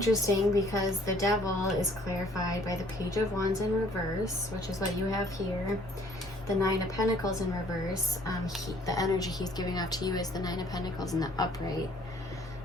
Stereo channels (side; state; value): right; noise; rumble, 20 dB below the sound